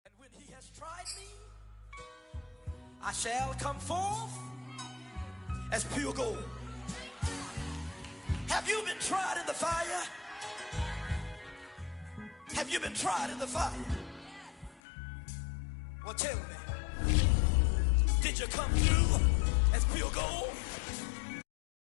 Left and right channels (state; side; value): drops out; right; at 14.8 s